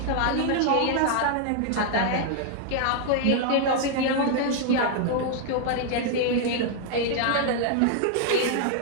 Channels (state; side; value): different; both; correlation 0.00